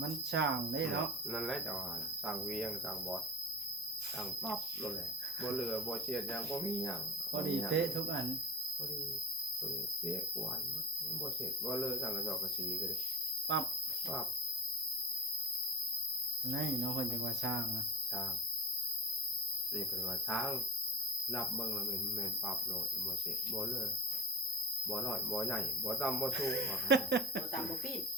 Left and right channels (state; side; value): normal; both; correlation 0.31